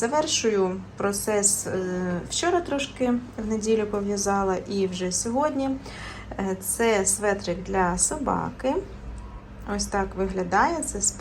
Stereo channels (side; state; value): both; identical; correlation 1.00